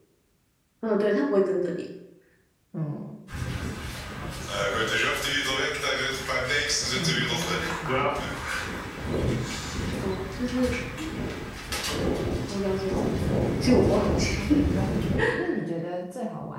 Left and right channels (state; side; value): identical; both; correlation 1.00